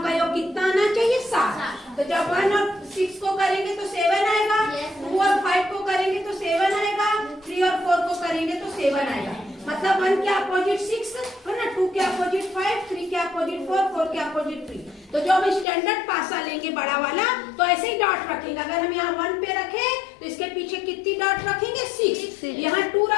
का योग कितना आना चाहिए, 7। तो जब 1 और 6 को करेंगे तो 7 आएगा, 2 और 5 को करेंगे तो 7 आएगा, 3 और 4 को करेंगे तो 7 आएगा। मतलब 1 के अपोजिट 6 है ना, 2 के अपोजिट 5, 3 के अपोजिट 4, 4 के अपोजिट 3। तो जो हम स्टैंडर्ड पासा लेंगे बड़ा वाला तो ऐसे ही डॉट रखेंगे। अगर हम यहाँ 1 पे रखे तो इसके पीछे कितनी डॉट रखेंगे, 6। यहाँ 2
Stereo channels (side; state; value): right; drops out; at 15.7 s